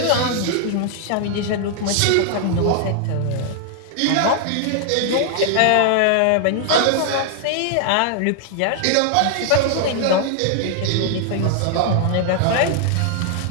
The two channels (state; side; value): different; both; correlation 0.00